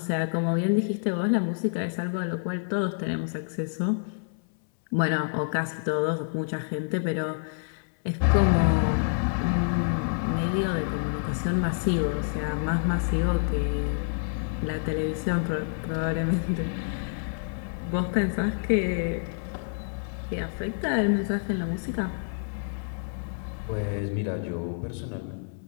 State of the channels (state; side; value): silent; right; 60 dB below the other